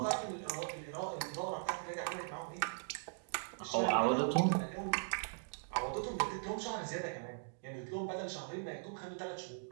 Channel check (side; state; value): left; silent; digital silence